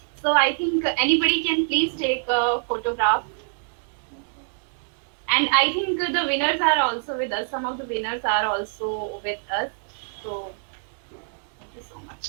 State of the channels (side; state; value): left; silent; digital silence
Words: so I think anybody can please take a photograph. And I think the winners are also with us. Some of the winners are also with us. So thank you so